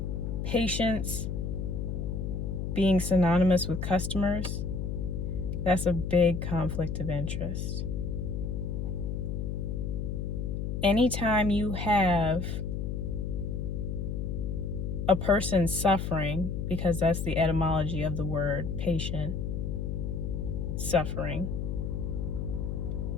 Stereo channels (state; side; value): noise; left; hum, 2 dB below the sound